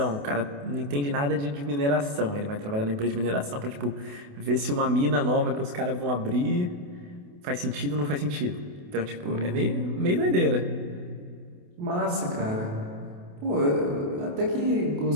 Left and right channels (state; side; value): late; left; 28 ms